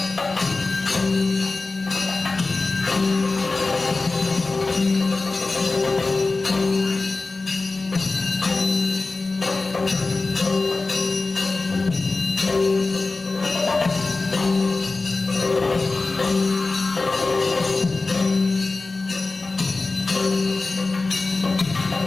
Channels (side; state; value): right; quieter; 3.6 dB